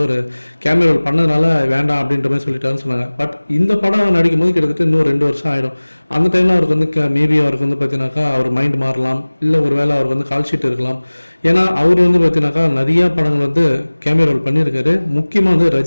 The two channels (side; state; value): both; inverted; correlation -1.00